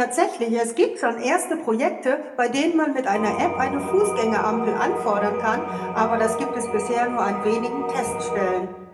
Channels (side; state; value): both; identical; correlation 1.00